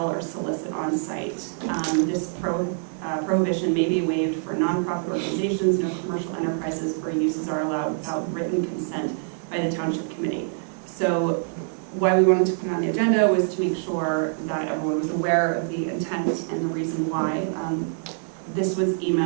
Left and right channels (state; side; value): silent; left; digital silence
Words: or solicit on site. This prohibition may be waived for nonprofit organizations. No commercial enterprises or uses are allowed without written consent by the Township Committee. So why we wanted to put it on the agenda was to make sure that everyone was aware of the intent and the reason why. This was